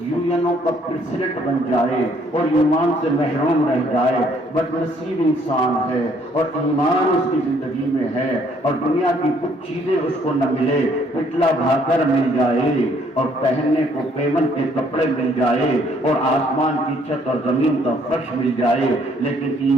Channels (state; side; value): normal; both; correlation 0.64